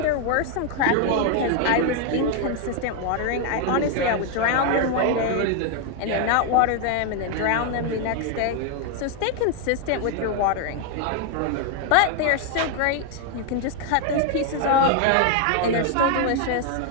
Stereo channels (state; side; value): different; both; correlation 0.01